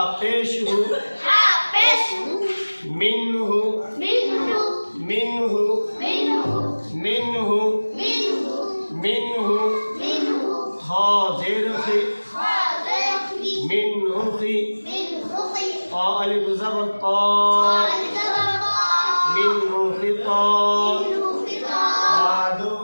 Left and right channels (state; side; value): inverted; both; correlation -1.00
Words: पेश हु मिन्हु मिन्हु मिन्हु मिन्हु हा ज़ेर खी मिन्हु खी अलिफ ज़बर ता मिन्हु खिता बादो